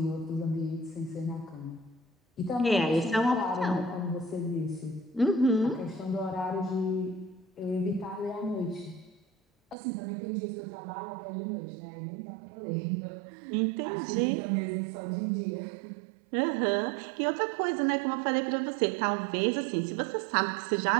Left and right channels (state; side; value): drops out; left; at 9.8 s